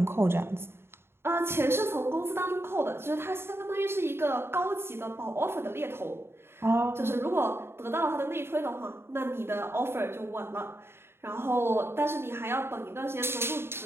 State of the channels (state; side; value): late; left; 0.12 ms